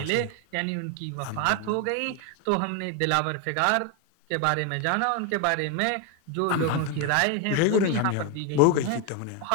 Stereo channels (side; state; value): both; different; correlation 0.02